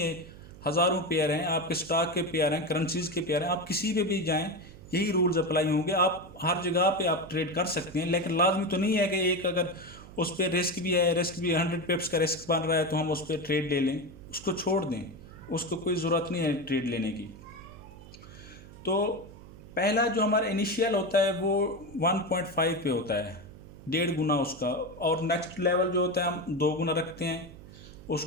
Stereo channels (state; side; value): noise; right; hum, 18 dB below the sound